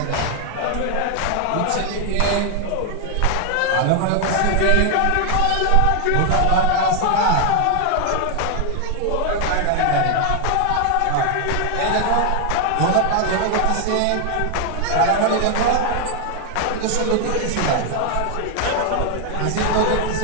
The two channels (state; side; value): different; both; correlation 0.00